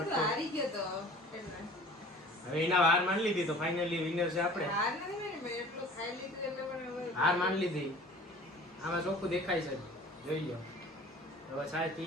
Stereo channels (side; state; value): both; normal; correlation 0.46